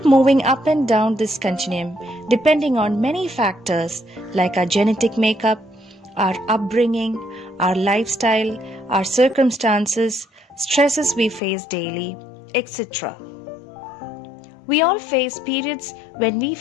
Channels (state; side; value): drops out; right; at 11.4 s